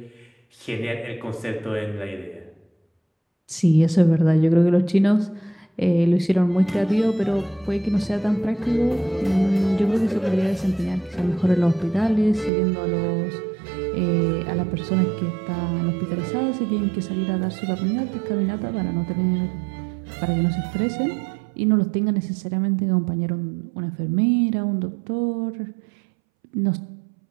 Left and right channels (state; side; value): drops out; left; at 12.5 s